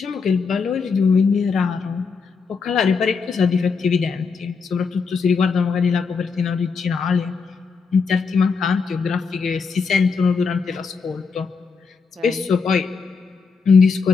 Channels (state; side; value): quieter; right; 5.2 dB